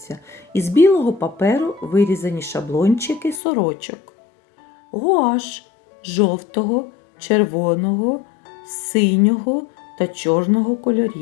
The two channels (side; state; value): right; drops out; at 3.4 s